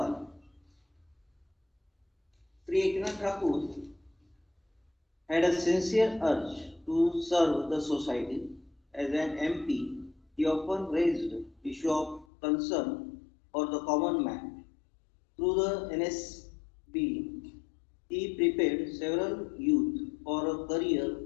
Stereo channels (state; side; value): drops out; right; at 12.2 s